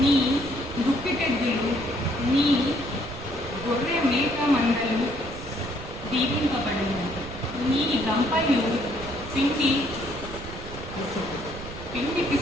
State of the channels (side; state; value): right; noise; rumble, 12 dB below the sound